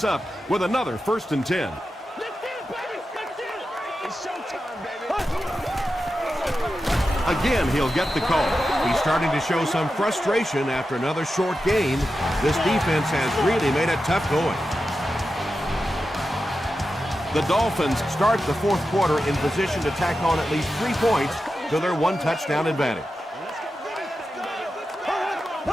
up with another 1st and 10. Again, he'll get the call. He's starting to show some frustration after another short gain. This defense has really made it tough going. The Dolphins start the 4th quarter in position to tack on at least 3 points to their 1-touchdown advantage.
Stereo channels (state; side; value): normal; both; correlation 0.91